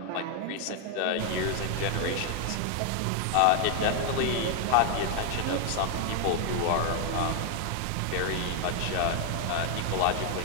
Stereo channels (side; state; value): both; different; correlation 0.00